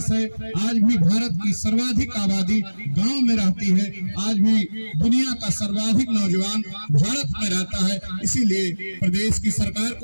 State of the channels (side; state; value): both; inverted; correlation -1.00